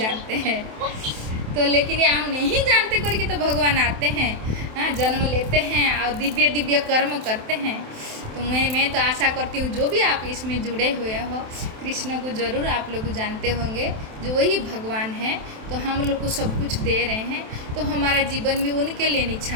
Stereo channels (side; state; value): left; late; 27 ms